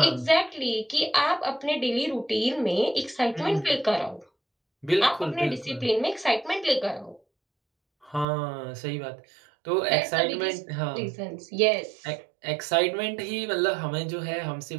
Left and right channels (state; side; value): drops out; left; at 8.2 s